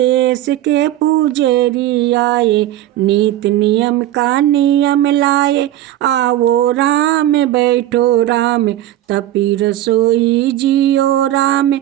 के पुजेरी आए, नीत नियम का नियम लाए, आओ राम बैठो राम, तपी रसोई जियो राम,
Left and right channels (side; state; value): left; quieter; 13.6 dB